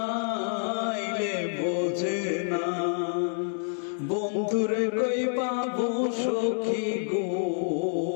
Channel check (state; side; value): silent; right; 59 dB below the other